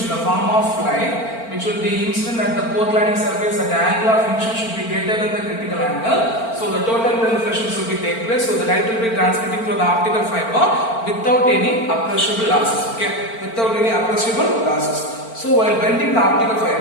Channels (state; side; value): late; right; 4.4 ms